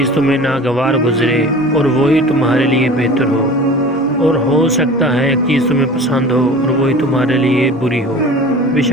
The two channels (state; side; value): normal; both; correlation 0.40